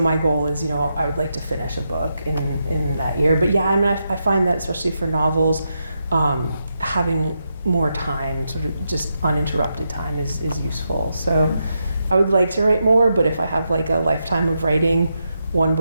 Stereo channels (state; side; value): inverted; both; correlation -0.85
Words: goal is, I would like to finish a book in that year. But yeah, I find that especially for novels, having more time, sort of just uninterrupted time is useful. So I would like to write more, but if I have a lifetime of writing one